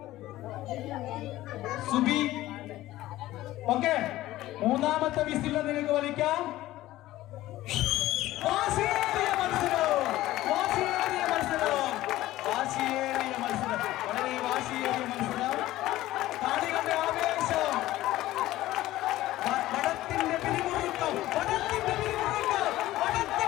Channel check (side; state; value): right; quieter; 15.9 dB